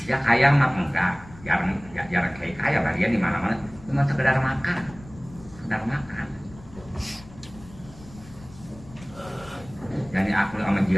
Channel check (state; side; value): noise; left; rumble, 20 dB below the sound